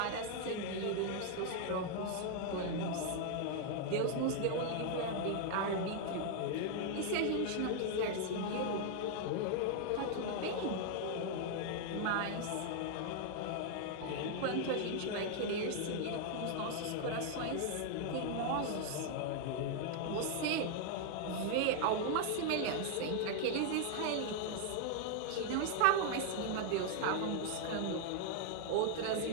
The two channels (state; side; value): different; both; correlation 0.00